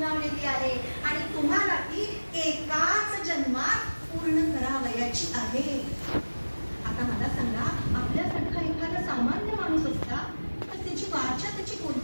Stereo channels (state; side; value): inverted; both; correlation -1.00